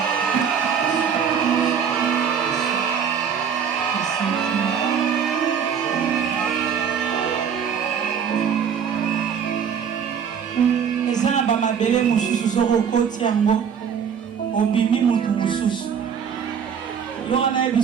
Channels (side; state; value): left; quieter; 7.4 dB